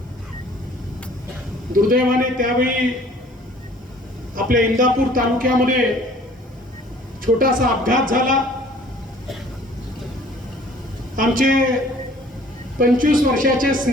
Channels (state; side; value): normal; both; correlation 0.53